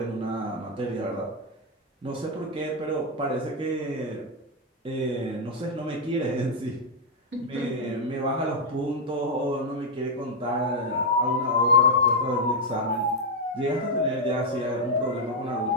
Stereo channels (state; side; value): normal; both; correlation 0.01